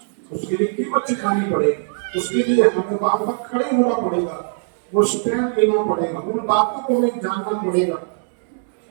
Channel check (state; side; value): silent; left; digital silence